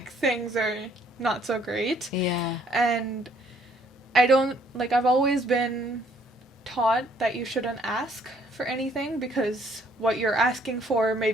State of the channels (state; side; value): normal; both; correlation 0.64